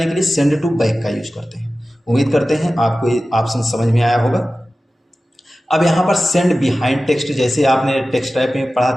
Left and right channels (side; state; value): both; normal; correlation 0.95